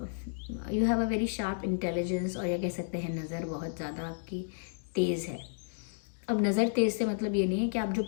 you have a very sharp intelligence, और या कह सकते हैं नज़र बहुत ज़्यादा आपकी तेज़ है। अब नज़र तेज़ से मतलब ये नहीं है कि आप जो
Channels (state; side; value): silent; right; digital silence